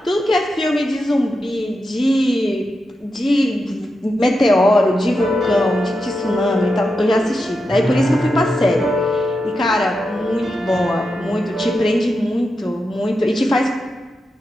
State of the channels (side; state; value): both; normal; correlation 0.88